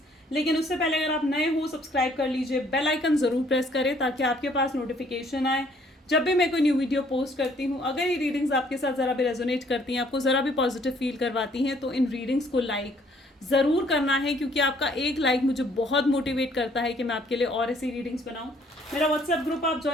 लेकिन उससे पहले अगर आप नए हो, सब्सक्राइब कर लीजिए, बेल आइकन जरूर प्रेस करें ताकि आपके पास नोटिफिकेशन आए जब भी मैं कोई न्यू वीडियो पोस्ट करती हूँ। अगर ये रीडिंग्स आपके साथ ज़रा भी रेजोनेट करती हैं, आपको ज़रा भी पॉजिटिव फील करवाती हैं, तो इन रीडिंग्स को लाइक ज़रूर करना है, क्योंकि आपका एक लाइक मुझे बहुत मोटिवेट करता है कि मैं आपके लिए और ऐसी रीडिंग्स बनाऊं। मेरा व्हाट्सएप ग्रुप आप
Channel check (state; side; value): normal; both; correlation 0.63